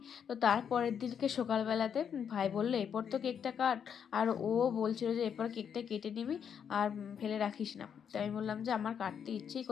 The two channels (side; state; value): right; quieter; 7.8 dB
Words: তো তারপরের দিনকে সকালবেলাতে ভাই বললো এরপর তো কেকটা কাট, আর ও বলছিল যে এরপর কেকটা কেটে নিবি আর ফেলে রাখিস না। তাই আমি বললাম যে আমার কাটতে ইচ্ছেই